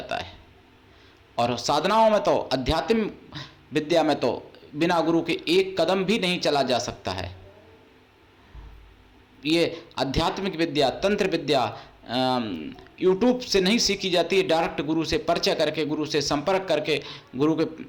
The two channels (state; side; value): identical; both; correlation 1.00